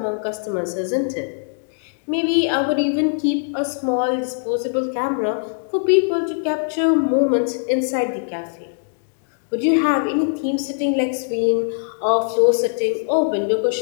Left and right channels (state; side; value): silent; right; digital silence